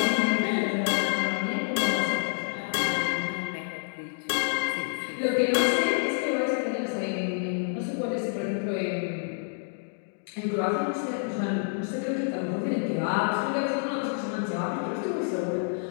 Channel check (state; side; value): silent; right; digital silence